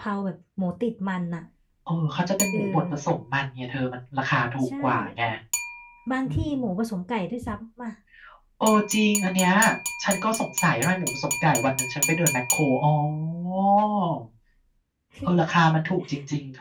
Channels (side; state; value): both; identical; correlation 1.00